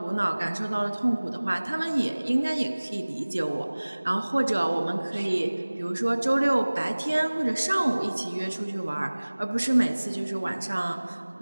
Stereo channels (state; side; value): inverted; both; correlation -1.00